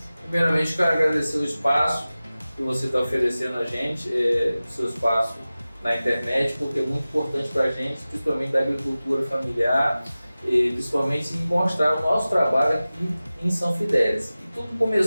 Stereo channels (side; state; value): both; inverted; correlation -0.96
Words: Primeiramente, quero agradecer o espaço que você está oferecendo a gente, o seu espaço na internet, porque é muito importante para a gente, principalmente da agricultura familiar, e principalmente em mostrar o nosso trabalho aqui em São Fidélis. E tudo